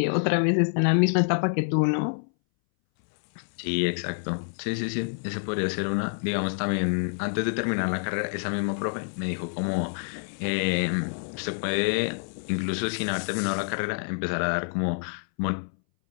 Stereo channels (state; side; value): silent; right; 60 dB below the other